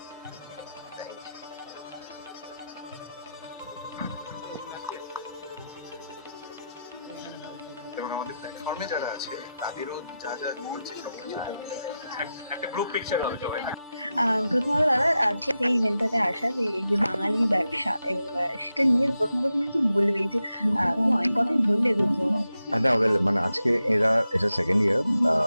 এবং আমাদের প্ল্যাটফর্মে যারা আছে তাদেরও যা যা বলছে সবকিছু একটা গ্রুপ পিকচার হবে সবাই। প্রথমত দাদা আজকে এই ইভেন্টটাতে আসা, যে এই যে বাঙালি ব্যবসা এবং সেটা নিয়ে প্রথম কি বলবে, যে অনেক কথাই বললে দুটো। না, মানে আজকে এটা second year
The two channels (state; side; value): inverted; both; correlation -0.90